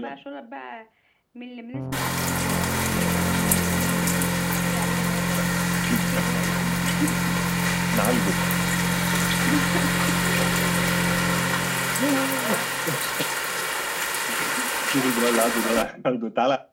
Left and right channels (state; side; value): identical; both; correlation 1.00